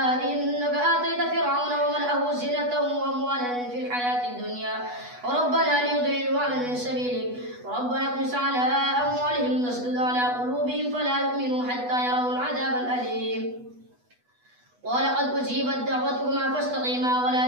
إنك آتيت فرعون وملأه زينة وأموالا في الحياة الدنيا وربنا ليضلوا عن سبيلك وربنا اطمس على أموالهم واسدد على قلوبهم فلا يؤمنوا حتى يروا العذاب الأليم قال قد أجيبت دعوتكما فاستقيما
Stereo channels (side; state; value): left; late; 8.2 ms